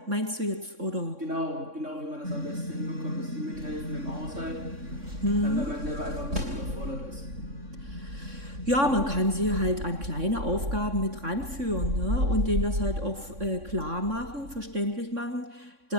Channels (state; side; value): late; left; 3.6 ms